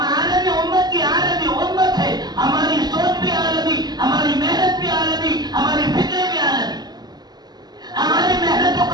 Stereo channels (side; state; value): left; late; 0.20 ms